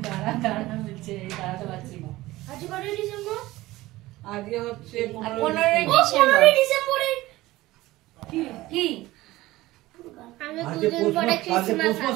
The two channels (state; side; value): quieter; left; 17.9 dB